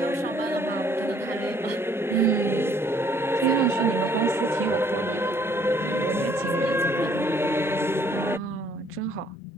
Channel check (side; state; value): both; normal; correlation 0.62